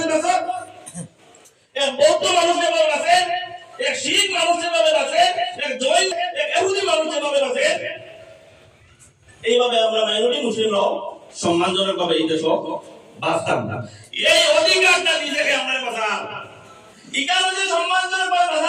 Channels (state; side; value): identical; both; correlation 1.00